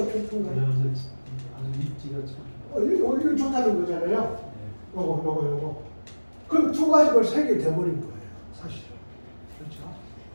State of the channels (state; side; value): inverted; both; correlation -1.00